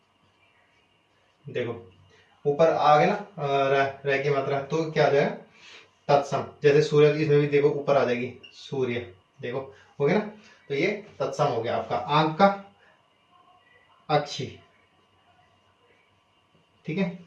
देखो ऊपर आ गया ना रह की मात्रा, तो क्या आ जाएगा, तत्सम, जैसे सूर्य, इसमें भी देखो ऊपर आ जाएगी सूर्य, देखो हो गया ना, तो ये तत्सम हो गया आपका। आंख का अक्षी, ठीक है,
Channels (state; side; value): identical; both; correlation 1.00